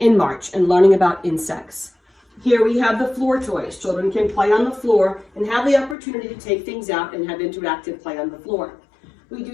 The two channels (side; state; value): right; drops out; at 6.0 s